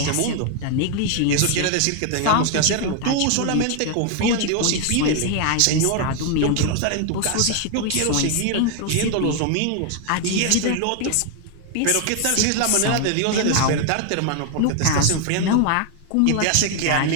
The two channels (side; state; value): both; different; correlation 0.01